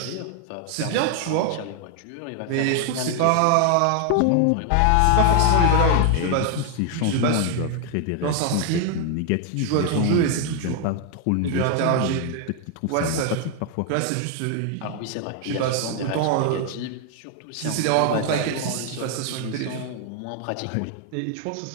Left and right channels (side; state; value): both; different; correlation 0.00